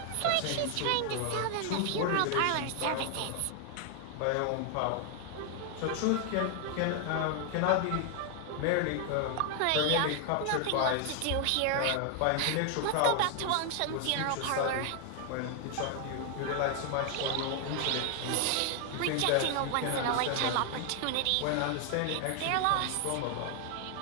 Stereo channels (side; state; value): both; different; correlation 0.00